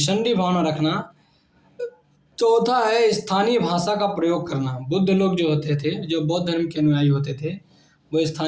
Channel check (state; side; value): identical; both; correlation 1.00